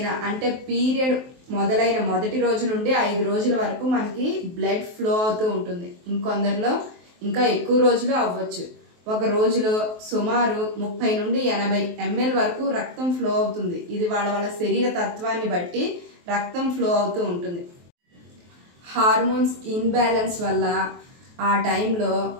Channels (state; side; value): late; left; 23 ms